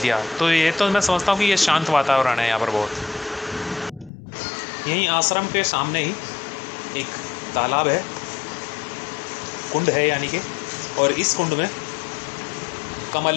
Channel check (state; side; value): drops out; right; at 4.1 s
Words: तो ये तो मैं समझता हूँ कि ये शांत वातावरण है यहाँ पर बहुत। यहीं आश्रम के सामने ही एक तालाब है, कुंड है यानी कि, और इस कुंड में